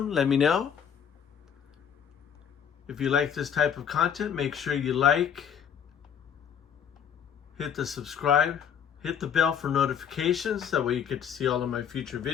let me know. If you like this type of content, make sure you like, hit the subscribe, hit the bell for notifications. That way you get to see all of my future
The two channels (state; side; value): quieter; right; 8.3 dB